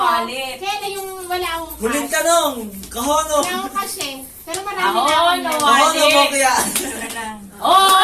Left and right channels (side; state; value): both; identical; correlation 1.00